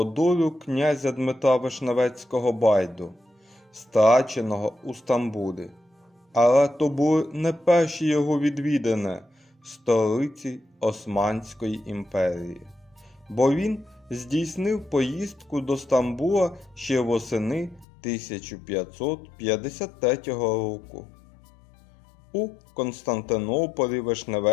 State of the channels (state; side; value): drops out; right; at 17.9 s